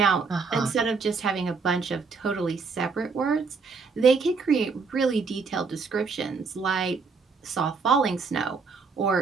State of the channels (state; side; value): quieter; left; 4.8 dB